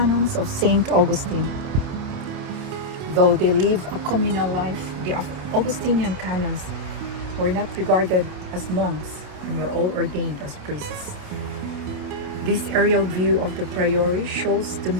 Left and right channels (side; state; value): left; late; 28 ms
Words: of Saint Augustine. Though they live a communal life, the Augustinian canons were not regarded as monks and were all ordained as priests. This aerial view of the Priory shows the